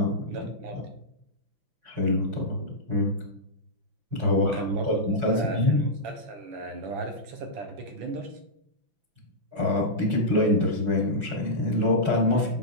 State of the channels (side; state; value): left; late; 5.9 ms